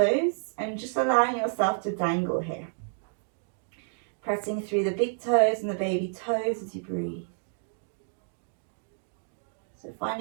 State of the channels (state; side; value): silent; left; digital silence